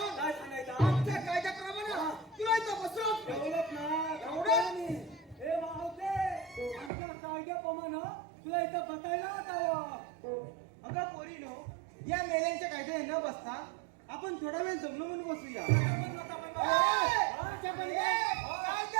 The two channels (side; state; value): left; drops out; at 6.9 s